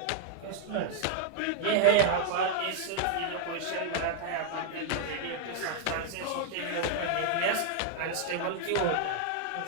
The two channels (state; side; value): different; both; correlation 0.00